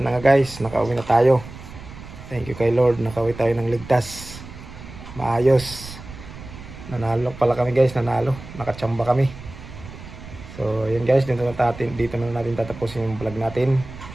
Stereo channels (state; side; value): noise; right; rumble, 15 dB below the sound